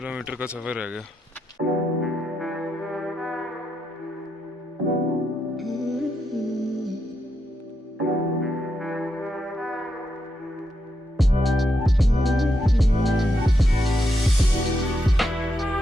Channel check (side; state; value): both; normal; correlation 0.83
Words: का सफर रह गया।